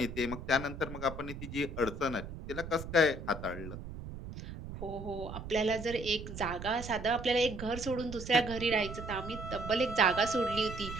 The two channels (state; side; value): noise; right; rumble, 9 dB below the sound